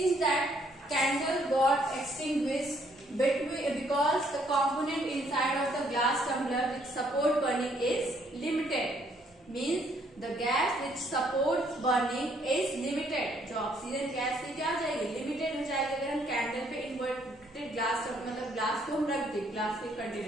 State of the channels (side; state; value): both; normal; correlation 0.67